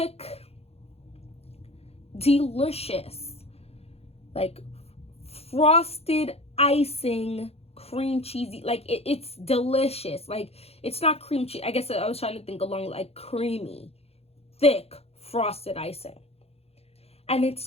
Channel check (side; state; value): right; late; 0.29 ms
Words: delicious, like frosted icing, cream cheesy, like it's delicious. Like it's not cream cheese, I guess I was trying to think along like creamy, thick, frosted icing. And it's